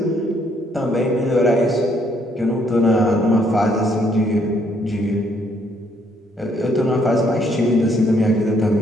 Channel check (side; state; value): both; normal; correlation 0.69